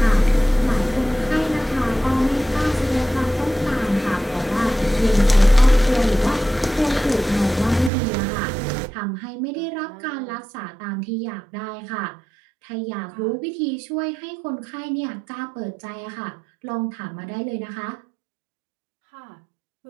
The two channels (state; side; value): drops out; left; at 7.9 s